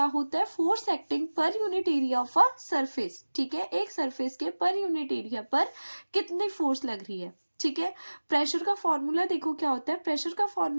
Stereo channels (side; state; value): both; inverted; correlation -1.00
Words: होता है, force acting per unit area of a surface, ठीक है। एक सरफेस के पर यूनिट एरिया पर कितनी फोर्स लग रही है, ठीक है। प्रेशर का फॉर्मूला देखो क्या होता है, प्रेशर का